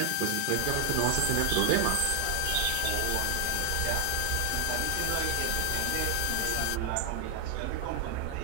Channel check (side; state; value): both; different; correlation 0.00